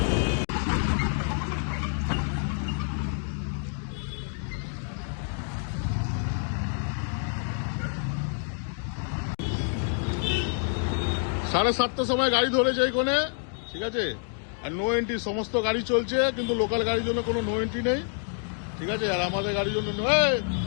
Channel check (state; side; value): silent; right; 58 dB below the other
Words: সাড়ে 7টার সময় গাড়ি ধরেছে এইখানে, ঠিক আছে। আর নো এন্ট্রি সমস্ত গাড়ি চলছে, কিন্তু লোকাল গাড়ির জন্য কোনো নো এন্ট্রি নেই, ঠিক আছে। আর আমাদের গাড়ির জন্য